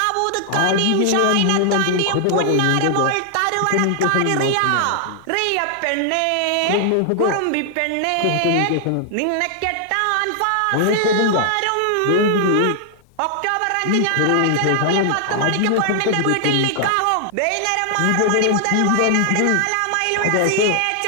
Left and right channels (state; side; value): different; both; correlation 0.00